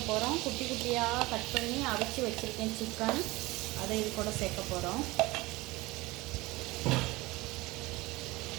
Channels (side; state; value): left; quieter; 21.3 dB